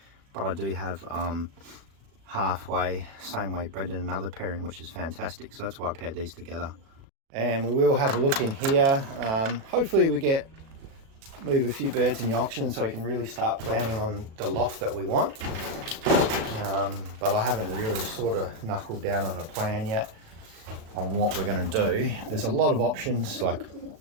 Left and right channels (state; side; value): late; left; 36 ms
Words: but I do have halfway, same way bred in another pairing, which is fantastic. So that's why I paired these together. And we will have a look in here. Hopefully we move a few birds in the auction so we can really start planning on the loft that we want. But I haven't really sort of knuckled down on a plan yet on what we're going to do. There's a lot of options, but